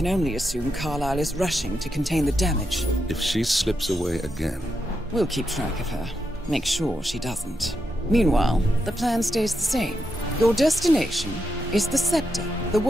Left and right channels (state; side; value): normal; both; correlation 0.84